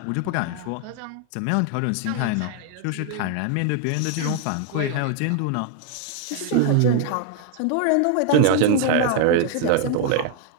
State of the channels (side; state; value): both; different; correlation 0.00